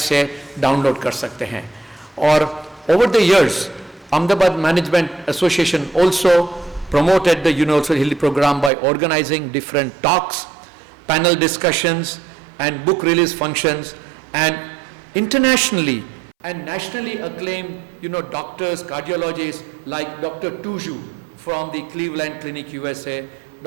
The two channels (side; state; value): left; drops out; at 8.7 s